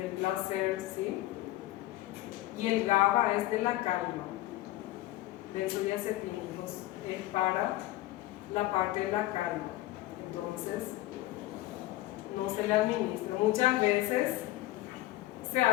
placer, ¿sí? Y el GABA es de la calma. Benzodiazepínicos es para la parte de la calma. Entonces, no se le administra. Muchas veces se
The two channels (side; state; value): right; quieter; 16.8 dB